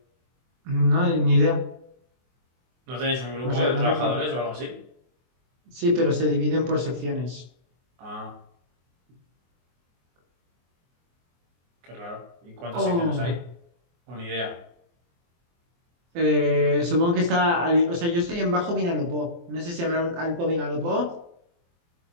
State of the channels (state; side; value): late; left; 24 ms